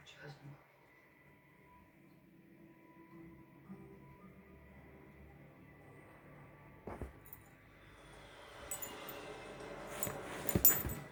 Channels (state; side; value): identical; both; correlation 1.00